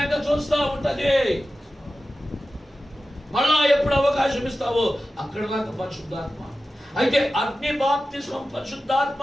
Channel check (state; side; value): normal; both; correlation 0.94